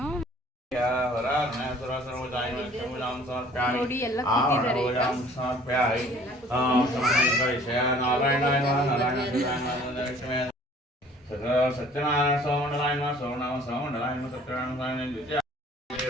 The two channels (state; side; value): normal; both; correlation 0.53